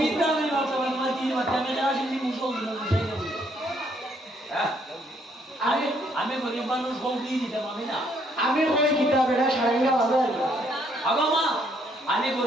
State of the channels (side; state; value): both; normal; correlation 0.68